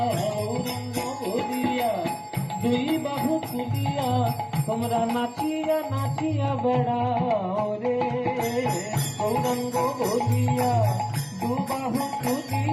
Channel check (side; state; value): both; identical; correlation 1.00